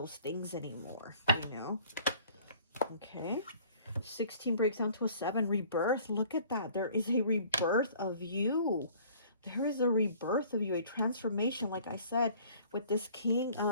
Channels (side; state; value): both; inverted; correlation -0.52